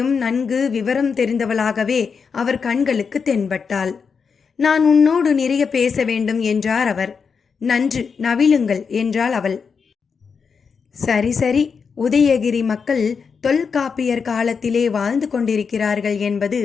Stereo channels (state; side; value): quieter; right; 5.8 dB